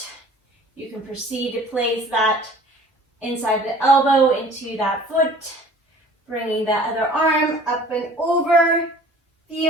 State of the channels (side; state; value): both; normal; correlation 0.48